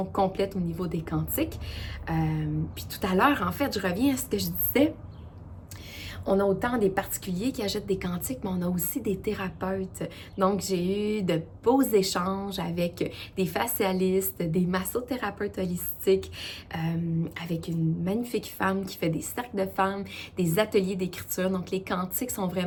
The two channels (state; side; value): identical; both; correlation 1.00